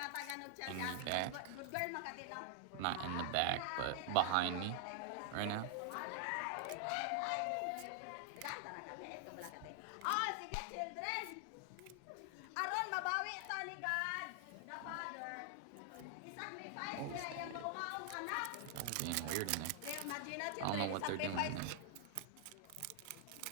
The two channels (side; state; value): both; different; correlation 0.00